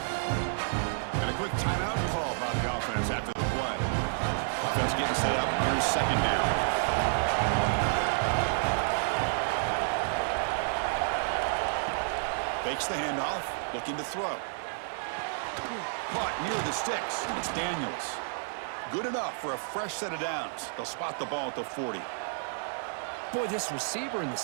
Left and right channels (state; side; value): silent; left; 58 dB below the other